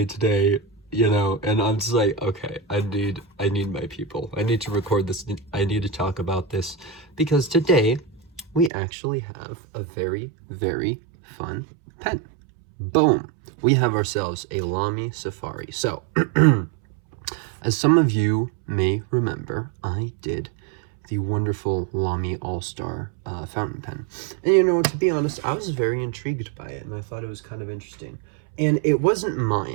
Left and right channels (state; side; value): drops out; left; at 8.7 s